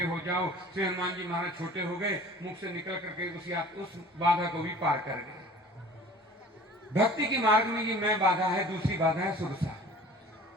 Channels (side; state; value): both; normal; correlation 0.45